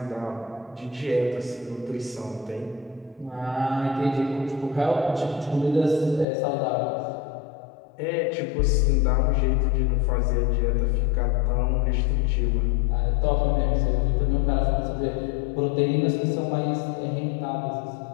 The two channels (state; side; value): drops out; right; at 6.2 s